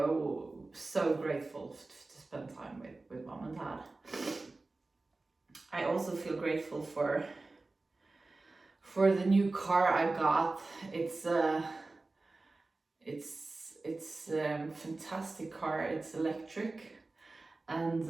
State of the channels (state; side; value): quieter; left; 3.3 dB